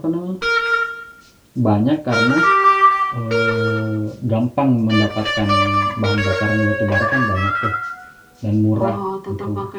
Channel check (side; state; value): both; identical; correlation 1.00